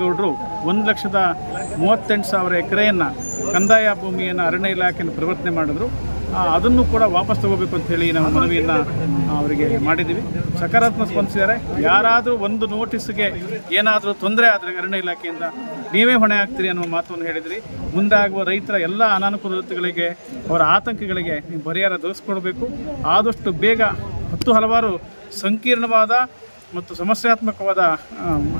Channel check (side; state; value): both; inverted; correlation -1.00